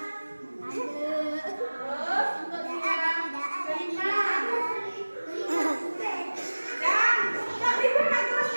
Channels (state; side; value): inverted; both; correlation -1.00